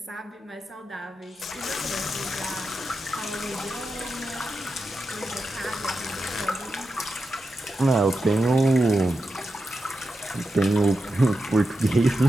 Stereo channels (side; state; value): both; normal; correlation 0.89